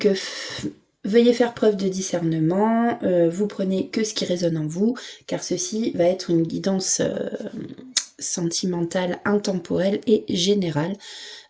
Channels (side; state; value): both; identical; correlation 1.00